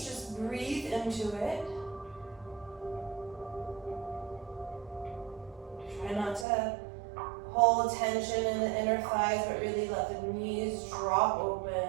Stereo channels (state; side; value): drops out; left; at 6.5 s